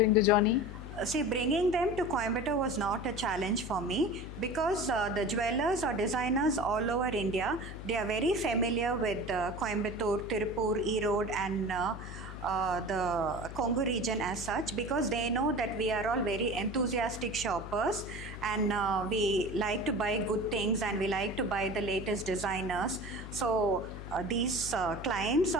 the journey? See, bringing them to Coimbatore was not a challenge for me because the jewelers or designers all over India, they are very familiar with Coimbatore, Tirupur, Erode and the Congo region as such, because they know that we are all very enthusiastic shoppers and we like to buy good things and we like to buy the latest designers. So these clients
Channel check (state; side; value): noise; left; hum, 10 dB below the sound